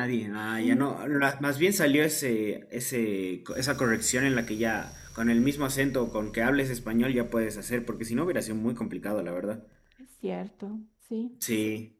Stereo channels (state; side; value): identical; both; correlation 1.00